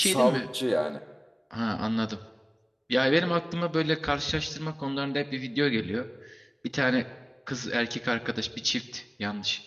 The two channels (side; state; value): both; identical; correlation 1.00